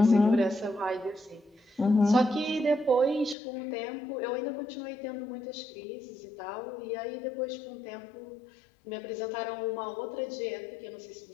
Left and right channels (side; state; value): right; drops out; at 3.4 s